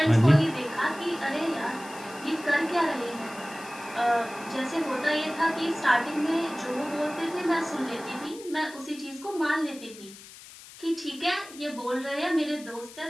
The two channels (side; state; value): left; noise; hiss, 18 dB below the sound